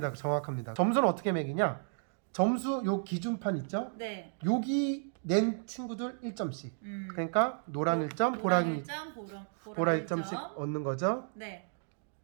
정확합니다. 점수는 어떻게 매기냐? 점수 요 기준판 있죠? 네. 여기 낸 친구들 1점씩. 그러니까 노랑 1점, 보라 1점씩 얻는 거죠. 네.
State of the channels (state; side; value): silent; left; digital silence